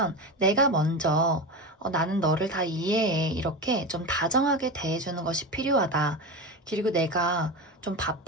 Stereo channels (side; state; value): both; normal; correlation 0.23